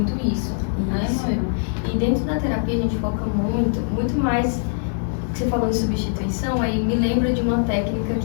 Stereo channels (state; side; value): silent; right; 64 dB below the other